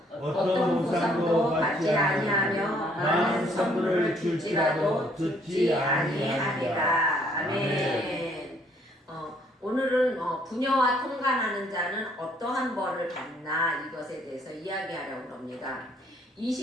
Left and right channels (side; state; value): both; normal; correlation 0.65